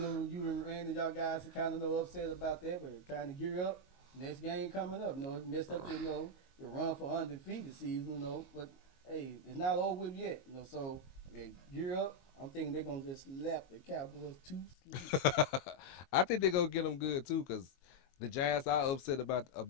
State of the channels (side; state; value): right; late; 22 ms